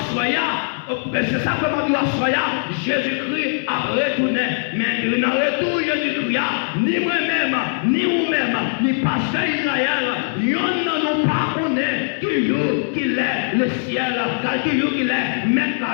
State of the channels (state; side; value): silent; right; digital silence